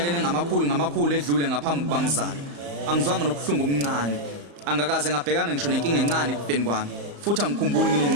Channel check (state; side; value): late; left; 35 ms